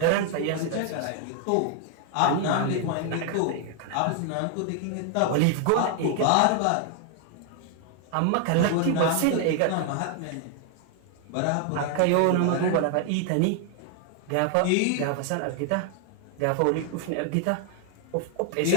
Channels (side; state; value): both; different; correlation 0.00